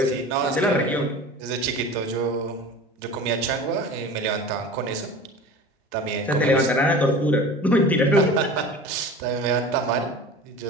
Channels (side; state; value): both; normal; correlation 0.37